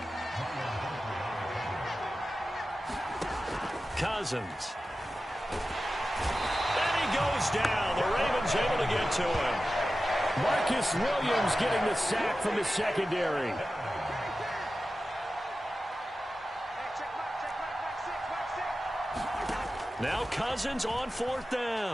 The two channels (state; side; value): normal; both; correlation 0.94